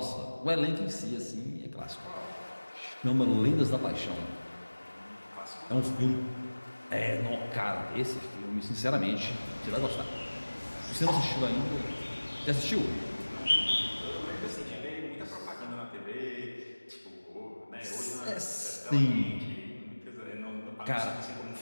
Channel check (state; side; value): inverted; both; correlation -1.00